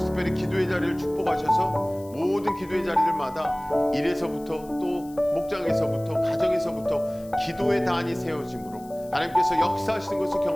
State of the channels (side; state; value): left; noise; hiss, 24 dB below the sound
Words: 특별히 기도의 자리를 축복하셔서 모든 기도의 자리들마다 일에서부터 또 목장에서부터 가정에서부터 기도의 단이 세워짐으로 하나님께서 역사하시는 것을